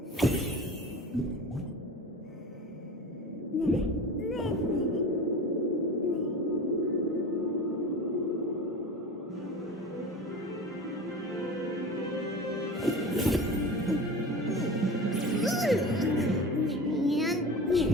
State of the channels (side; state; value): both; normal; correlation 0.34